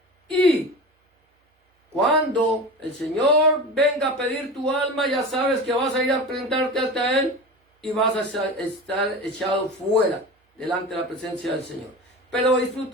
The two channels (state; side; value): normal; both; correlation 0.30